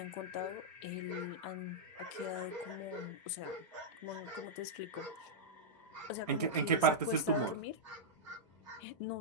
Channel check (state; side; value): normal; both; correlation -0.09